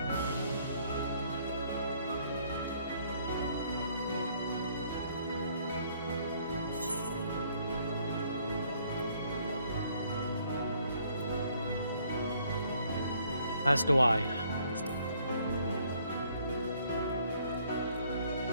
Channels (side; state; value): both; inverted; correlation -0.65